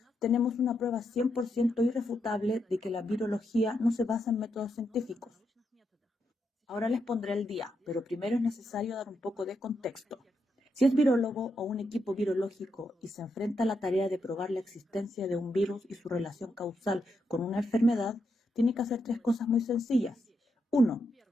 tenemos una prueba 100% irrefutable de que la virología no se basa en métodos científicos. Ahora les pondré el día, pero primero es necesario dar un poco de contexto. Si es virólogo o un equipo virológico y se enfrenta a la tarea de probar la existencia de un virus y su relación causal con una enfermedad, tiene que hacer tres cosas muy sencillas. 1.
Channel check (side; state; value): both; normal; correlation 0.82